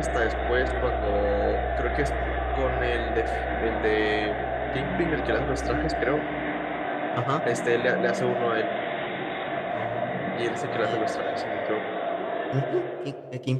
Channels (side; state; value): both; identical; correlation 1.00